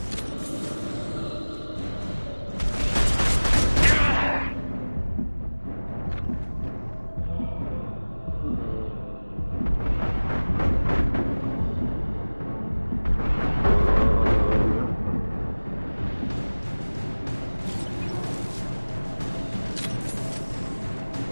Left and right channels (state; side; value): inverted; both; correlation -1.00